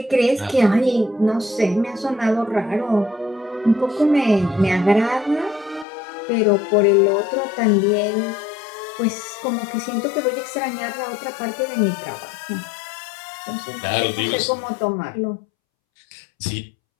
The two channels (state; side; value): drops out; right; at 5.9 s